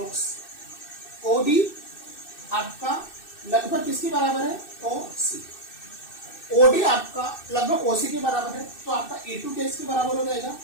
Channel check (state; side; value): late; right; 2.6 ms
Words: OD आपका लगभग किसके बराबर है OC, OD आपका लगभग OC के बराबर है, तो आपका E2 किसके बराबर हो जाएगा